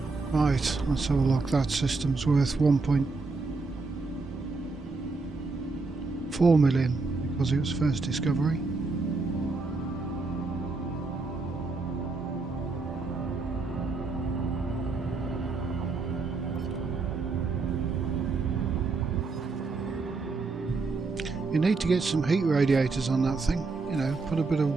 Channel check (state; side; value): quieter; left; 3.9 dB